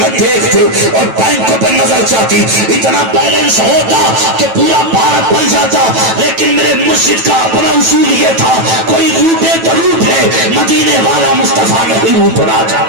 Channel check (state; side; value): late; left; 9.1 ms